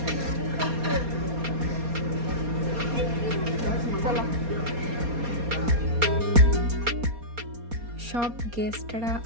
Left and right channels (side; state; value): left; late; 4.2 ms